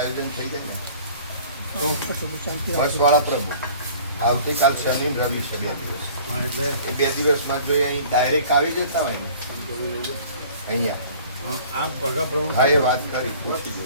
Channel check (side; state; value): both; inverted; correlation -0.48